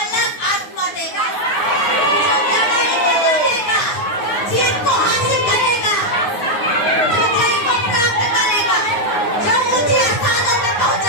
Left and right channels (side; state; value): right; late; 9.6 ms